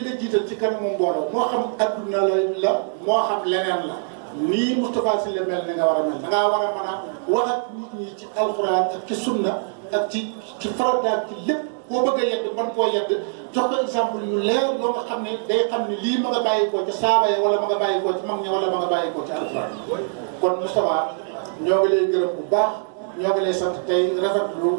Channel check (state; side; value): silent; left; digital silence